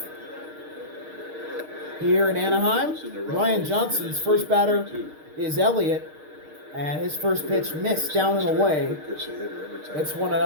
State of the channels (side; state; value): left; late; 6.5 ms